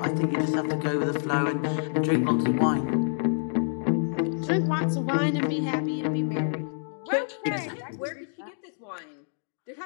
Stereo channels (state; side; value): silent; right; digital silence